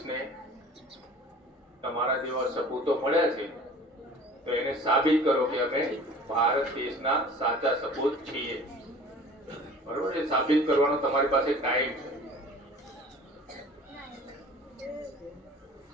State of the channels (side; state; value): both; normal; correlation 0.45